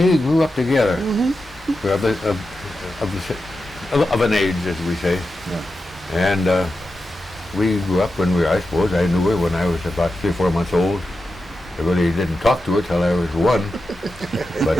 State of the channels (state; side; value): normal; both; correlation 0.90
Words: grew up together. We're of an age, as we say. And we grew up when I suppose, I knew her when I was about 3 or 4 months old. I really didn't talk to her till I was 1,